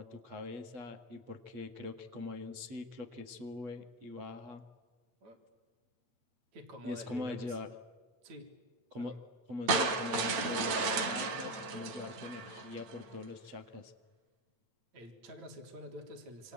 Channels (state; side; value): late; left; 8.9 ms